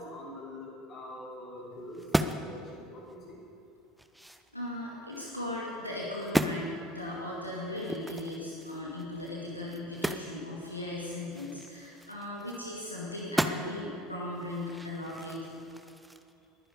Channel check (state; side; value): normal; both; correlation 0.51